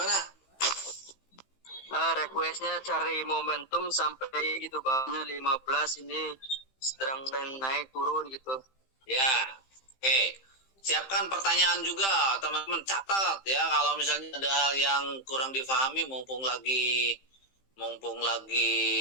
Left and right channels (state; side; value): late; right; 15 ms